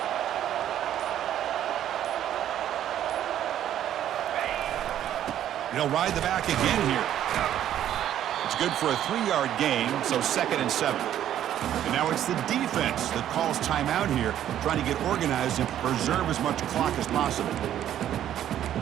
They'll ride the back again here. It's good for a 3-yard gain, so 2nd and 7. And now it's the defense that calls timeout here, trying to get organized and preserve as much clock as possible.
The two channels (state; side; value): quieter; left; 11.2 dB